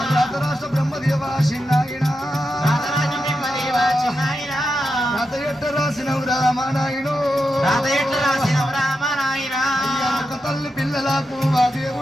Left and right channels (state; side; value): normal; both; correlation 0.87